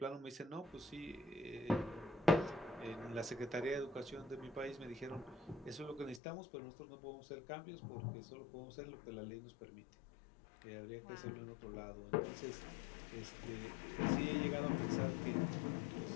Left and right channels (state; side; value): drops out; right; at 6.2 s